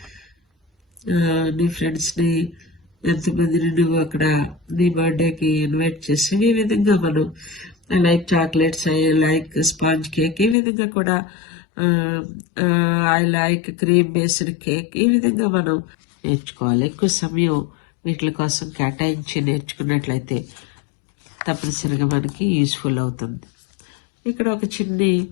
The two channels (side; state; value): right; drops out; at 10.6 s